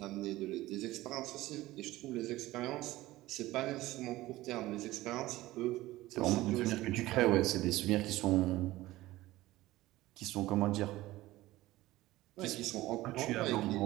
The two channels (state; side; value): quieter; left; 17.4 dB